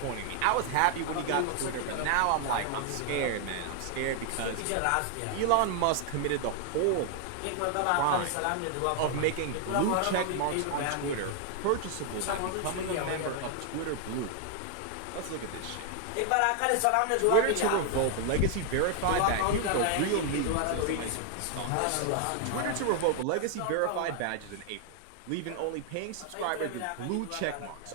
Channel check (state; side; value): different; both; correlation 0.00